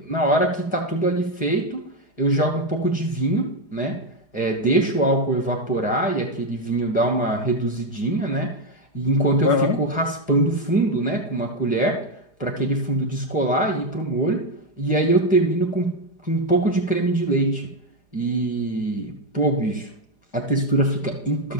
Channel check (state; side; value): late; right; 4.9 ms